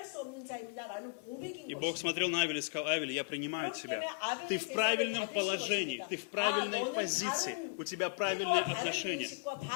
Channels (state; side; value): quieter; right; 35.5 dB